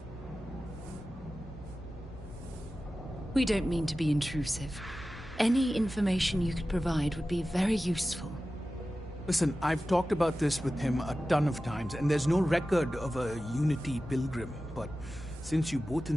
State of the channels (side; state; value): both; normal; correlation 0.95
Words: We don't mean to be intrusive. Any information you could provide would be very useful. Listen, I've talked about this with him a ton of times, and there's no record of a Unity pilgrim, but since you both